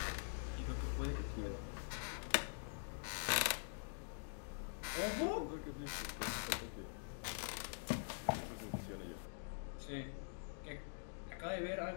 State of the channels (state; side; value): silent; right; digital silence